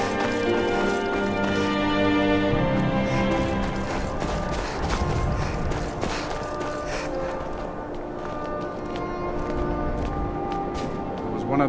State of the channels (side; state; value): both; identical; correlation 1.00